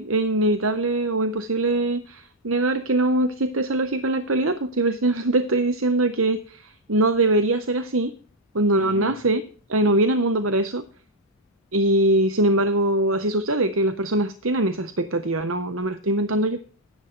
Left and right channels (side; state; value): both; normal; correlation -0.03